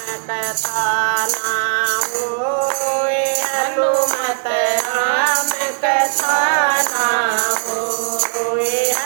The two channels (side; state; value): left; silent; 67 dB below the other